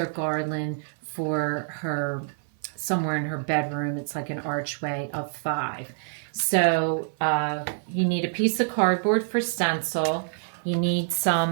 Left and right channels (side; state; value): left; silent; 56 dB below the other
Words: garland for her somewhere in her bedroom. It's like an archway of 5. So you need a piece of cardboard for stencil. You need